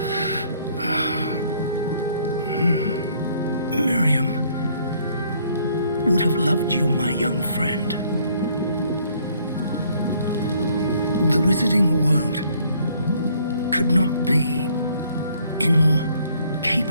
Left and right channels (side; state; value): both; inverted; correlation -0.64